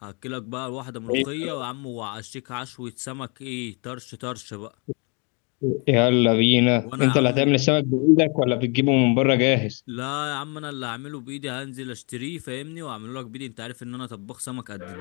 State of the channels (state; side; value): quieter; right; 33.5 dB